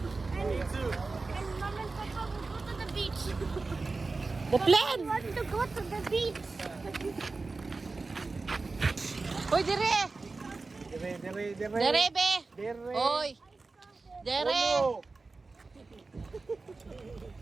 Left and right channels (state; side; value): quieter; left; 3.8 dB